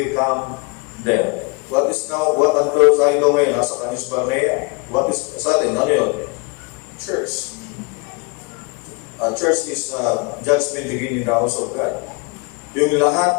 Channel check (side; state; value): right; quieter; 31.5 dB